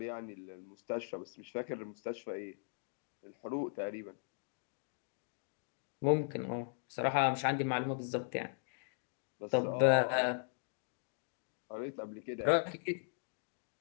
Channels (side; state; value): right; silent; digital silence